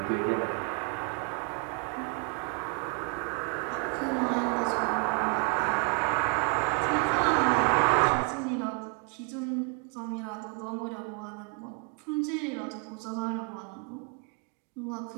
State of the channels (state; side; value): quieter; left; 35.3 dB